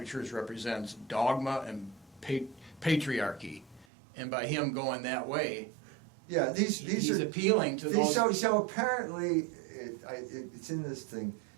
Church represents dogma and patriarchy, and by him going that way, he's appealing to those. So apparently, it's in this thing.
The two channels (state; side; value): drops out; left; at 3.9 s